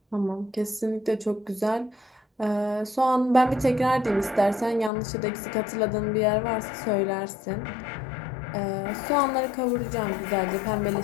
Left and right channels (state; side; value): drops out; right; at 4.9 s